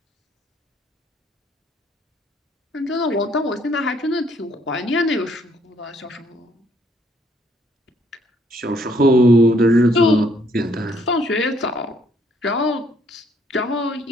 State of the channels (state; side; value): normal; both; correlation 0.67